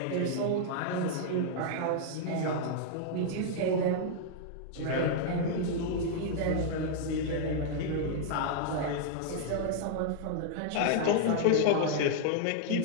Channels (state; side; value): different; both; correlation -0.01